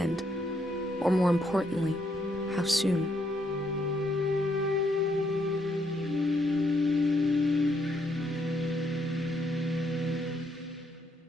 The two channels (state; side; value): normal; both; correlation 0.74